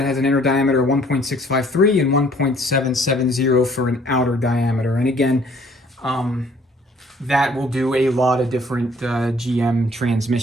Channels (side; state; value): both; normal; correlation 0.59